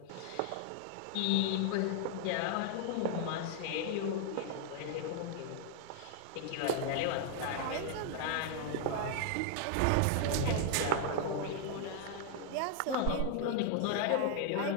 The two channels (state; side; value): different; both; correlation 0.00